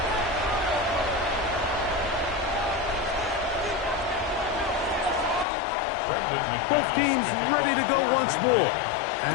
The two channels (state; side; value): drops out; right; at 5.5 s